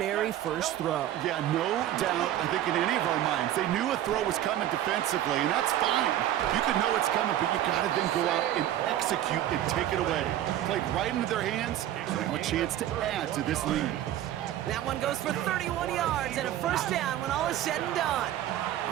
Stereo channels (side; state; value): left; quieter; 12.4 dB